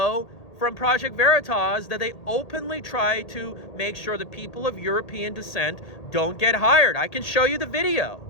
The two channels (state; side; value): late; right; 1.8 ms